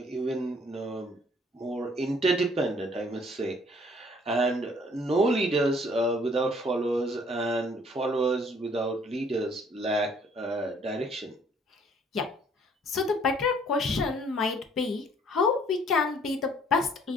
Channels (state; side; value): normal; both; correlation 0.60